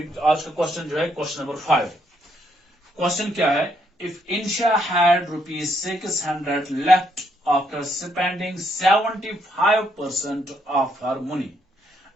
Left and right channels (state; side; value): normal; both; correlation 0.74